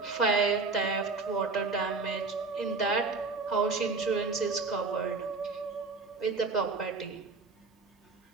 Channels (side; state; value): left; quieter; 4.1 dB